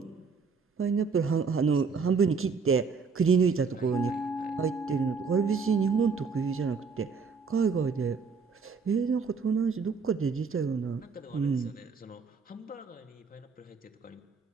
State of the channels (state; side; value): quieter; left; 5.2 dB